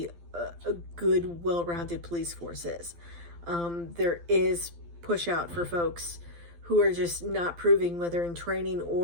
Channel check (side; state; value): left; late; 12 ms